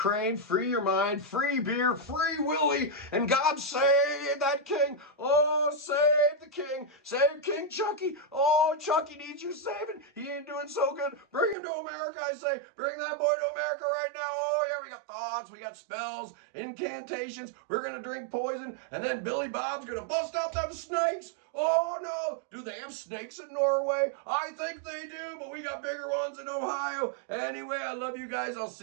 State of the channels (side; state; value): left; drops out; at 11.6 s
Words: free your mind, free beer, free Willie, and God save that king. Oh, save the king. Save King Chucky. Oh, Chucky needs your saving. He ain't doing so good. Bring him to America, I say. Bring that boy to America right now. Oh, yeah, we got thoughts, we got spells, incantations. We're going to drink poison, and then Billy Bob's going to bust out them snakes. Oh, no. Do they have snakes in Norway? I think they do, but we got bigger ones in Ohio. Anyway, I love you guys. I'll